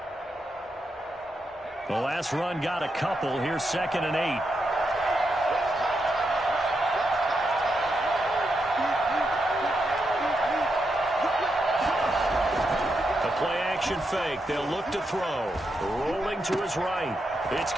The last run got a couple. Here's second and 8. Fake. They'll look to throw. Rolling to his right. It's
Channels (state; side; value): normal; both; correlation 0.84